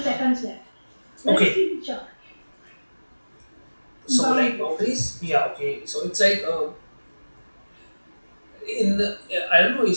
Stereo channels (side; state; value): both; inverted; correlation -1.00